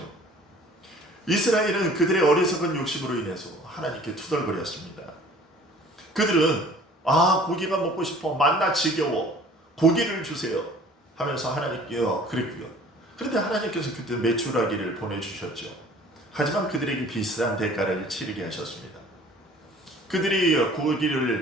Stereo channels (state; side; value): normal; both; correlation 0.50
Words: 이스라엘은 그들의 어리석은 욕심으로 인해서 하나님께 투덜거렸습니다. 그들은 고기가 먹고 싶어, 만나 지겨워, 고기를 주세요 하면서 하나님께요 그랬고요. 그런데 하나님께서 그때 메추라기를 보내주셨죠. 하지만 그들에게 비싼 대가를 치르게 하셨습니다. 그들이